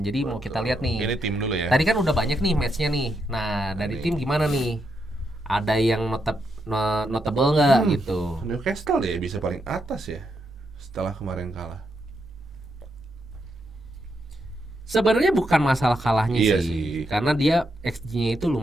Jadi mau kita lihat nih. Ini tim dulu ya. Tadi kan udah banyak nih matchnya nih. Nah dari tim gimana nih? Ada yang notable nggak gitu? Newcastle ya bisa paling atas ya setelah kemarin kalah. Sebenarnya bukan masalah kalahnya Iya sih, sih. karena dia XG-nya itu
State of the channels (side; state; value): both; normal; correlation 0.81